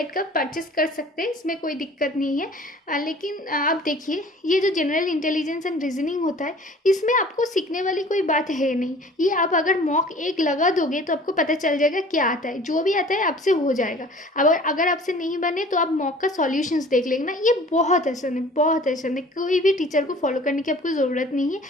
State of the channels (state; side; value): normal; both; correlation 0.48